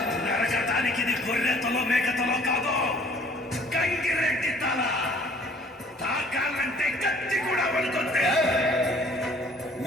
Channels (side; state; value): both; normal; correlation 0.55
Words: నరకటానికి ఇది గొర్రెతలో మేకతలో కాదు, గంగిరెడ్డి తల. తాకాలంటే కత్తి కూడా పడుతుంది.